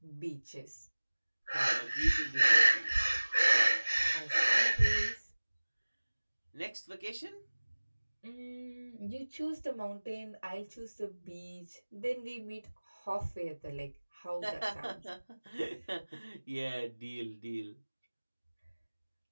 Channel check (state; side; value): inverted; both; correlation -1.00